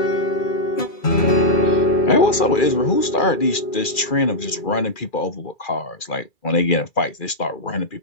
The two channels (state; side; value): late; right; 2.4 ms